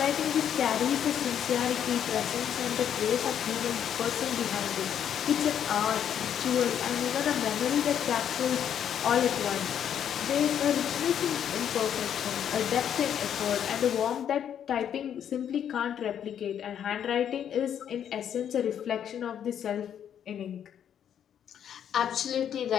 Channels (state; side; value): quieter; right; 9.2 dB